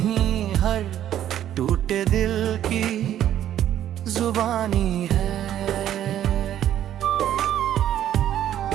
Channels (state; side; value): quieter; left; 11.3 dB